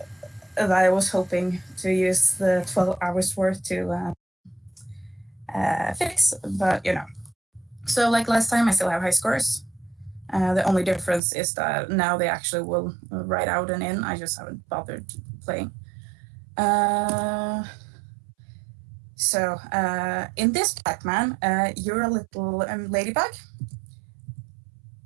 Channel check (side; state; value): left; drops out; at 11.2 s